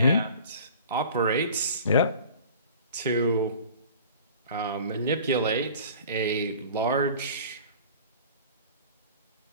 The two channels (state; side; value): inverted; both; correlation -0.44